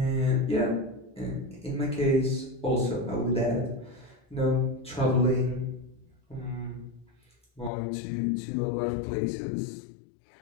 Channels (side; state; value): right; drops out; at 7.7 s